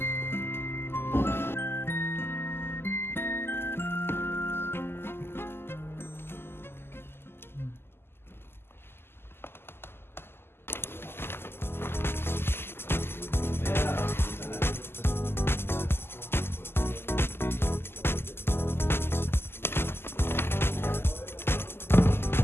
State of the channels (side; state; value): right; late; 0.12 ms